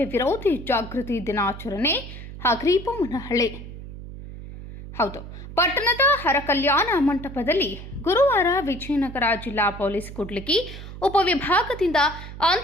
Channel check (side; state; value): right; noise; hum, 12 dB below the sound